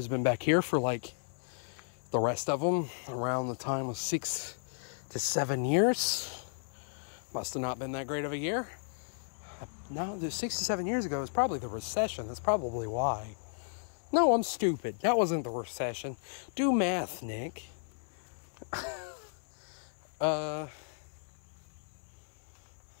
been back here for like the rest of them around the time of 6 to 7 years. Must have not been that great of a year. No, 6 to 7 years ago was probably the recession. That's probably why. No, I'm stupid. That wasn't the recession. Do math, Nick. It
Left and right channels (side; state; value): right; silent; 55 dB below the other